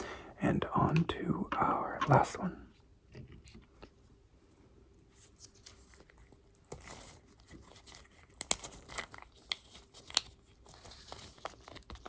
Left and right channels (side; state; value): both; identical; correlation 1.00